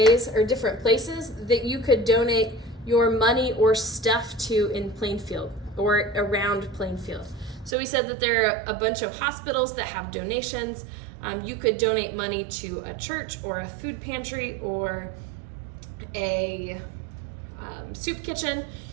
or different places that you could donate your money or stuff to in Plainfield or around Plainfield. So we said that there are a bunch of hospitals that have donations. You could donate money to a church or a food pantry or a soup kitchen.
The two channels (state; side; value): drops out; left; at 7.8 s